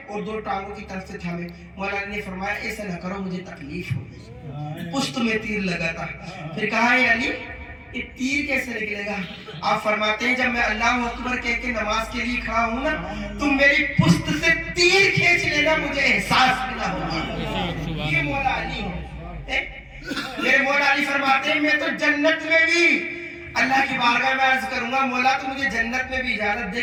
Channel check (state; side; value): identical; both; correlation 1.00